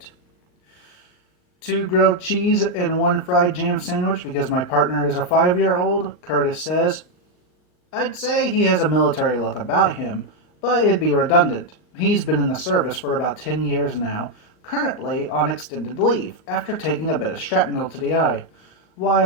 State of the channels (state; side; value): late; right; 39 ms